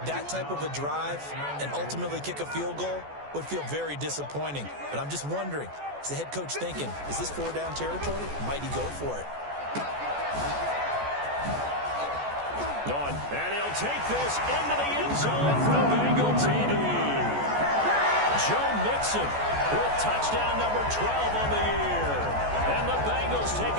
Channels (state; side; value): late; left; 14 ms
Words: that type of a drive and ultimately kick a field goal would feel very disappointing. But I'm just wondering, is the head coach thinking, is this 4-down territory? Might he go for it? On, and he'll take this into the end zone for the Bengal TD. Joe Mixon with touchdown number 12 on the year. And the Bengals take